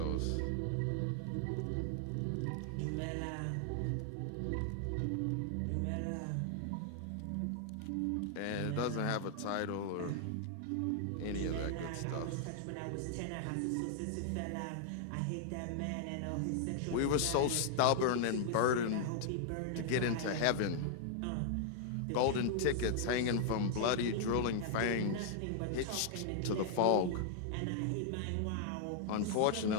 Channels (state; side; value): different; both; correlation -0.01